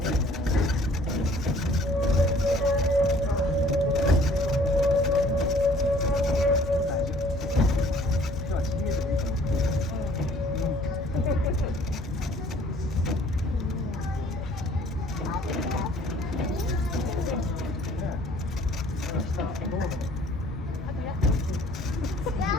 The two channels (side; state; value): both; normal; correlation 0.56